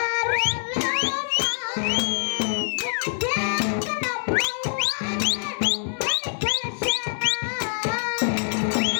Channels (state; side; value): silent; right; 62 dB below the other